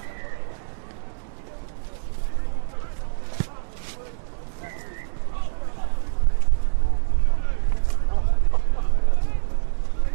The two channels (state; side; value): silent; left; digital silence